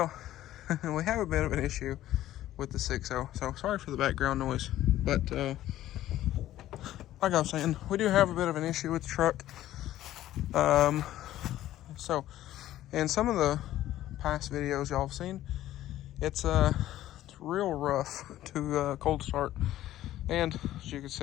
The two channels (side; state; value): right; quieter; 13.7 dB